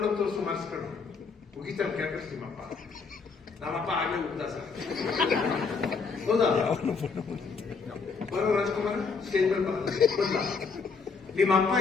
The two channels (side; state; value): right; quieter; 5.0 dB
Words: ತೋರಿಸು ಮಾರ್ಕ್ಸ್ ಕಣ್ಣು ಮುಗಿತಾರೆ ಕ್ಯಾಪಸ್ ನಿಮ್ಮಪ್ಪ. ನಮ್ಮಪ್ಪ ಆಗಲೇ ಉಗ್ದ ಸರ್. ಹೌದಾ? ಬರೋ ರಾಜ್ಕುಮಾರ್ ಸ್ಟೇಜ್ ಮೇಲೆ ಬಂದ. ನಿಮ್ಮ ಅಪ್ಪ